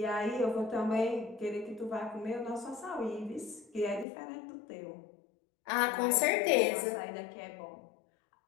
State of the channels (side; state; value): right; drops out; at 4.0 s